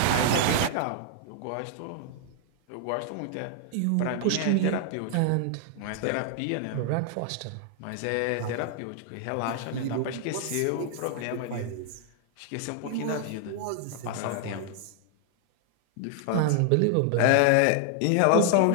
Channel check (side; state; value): both; different; correlation 0.00